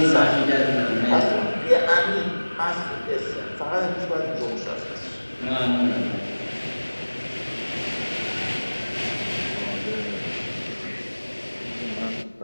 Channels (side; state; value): both; inverted; correlation -1.00